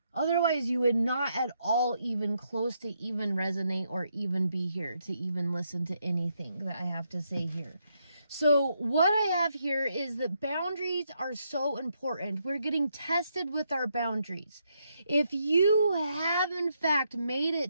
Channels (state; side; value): inverted; both; correlation -0.78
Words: Otherwise, you would not at all even close to even resonate or even be here to even listen to anything that I have to say here. So what I have here is that boundaries are so important. We're getting tested with our boundaries. If you have in fact made